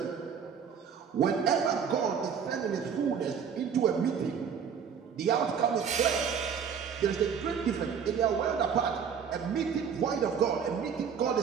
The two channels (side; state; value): left; quieter; 7.1 dB